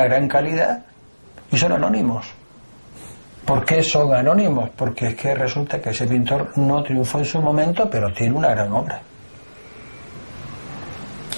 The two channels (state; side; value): inverted; both; correlation -1.00